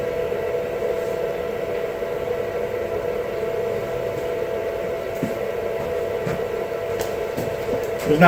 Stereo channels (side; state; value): both; identical; correlation 1.00